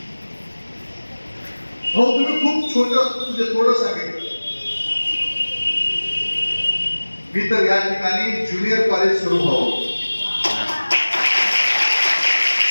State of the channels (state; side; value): inverted; both; correlation -1.00